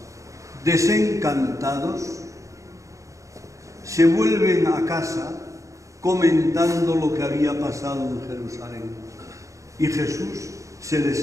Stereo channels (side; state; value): left; late; 0.15 ms